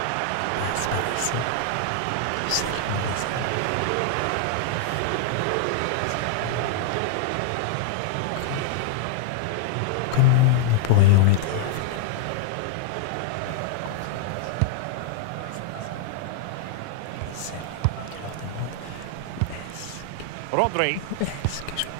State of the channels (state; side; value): different; both; correlation -0.01